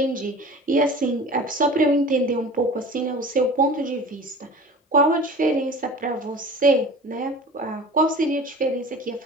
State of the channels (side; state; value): both; normal; correlation 0.39